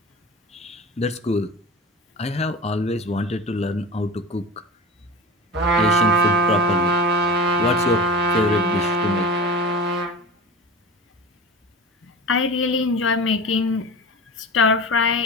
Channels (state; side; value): normal; both; correlation 0.31